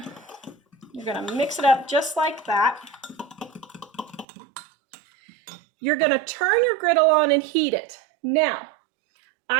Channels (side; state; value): left; drops out; at 4.2 s